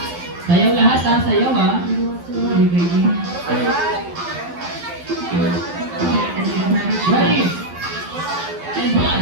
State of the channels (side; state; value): left; late; 12 ms